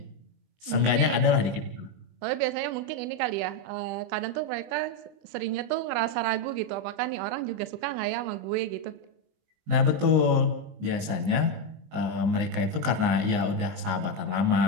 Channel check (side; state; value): left; late; 19 ms